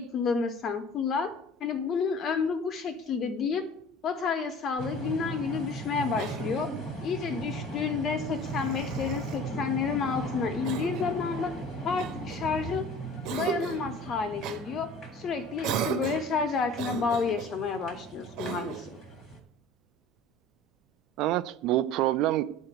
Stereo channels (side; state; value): both; normal; correlation 0.43